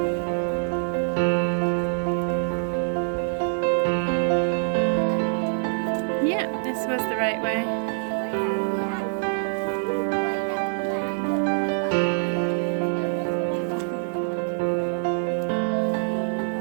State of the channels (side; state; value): left; silent; digital silence